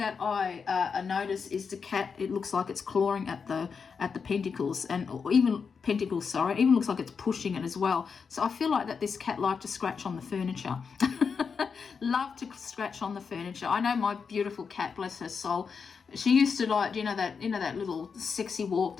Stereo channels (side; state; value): right; quieter; 5.8 dB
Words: I notice is the cat. It looks like it's clawing at the pentacles, and or even pentacles. Sorry, it even looks like it's pushing it as well. So I feel like that this cat liked to scratch on the furniture. Love to scratch on the furniture. I know my beautiful cat, bless her soul. She used to like, that little sexy walk